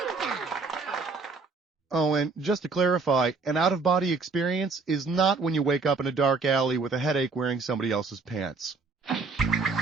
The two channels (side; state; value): left; quieter; 4.2 dB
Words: Oh, and just to clarify, an out-of-body experience is not when you wake up in a dark alley with a headache wearing somebody else's pants.